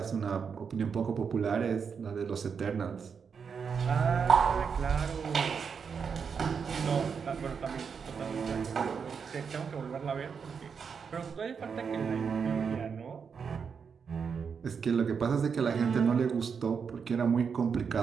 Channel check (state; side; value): quieter; left; 6.2 dB